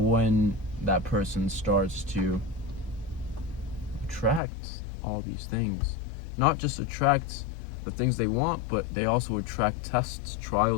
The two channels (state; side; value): drops out; right; at 4.4 s